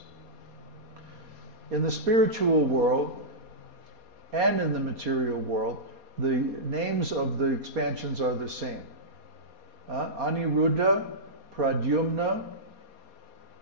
In the spiritual world and in the material world, the names of the expansions are the same. Aniruddha, Pradyumna,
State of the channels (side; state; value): left; late; 4.2 ms